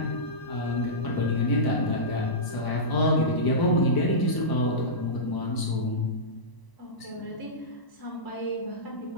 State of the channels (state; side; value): late; right; 1.0 ms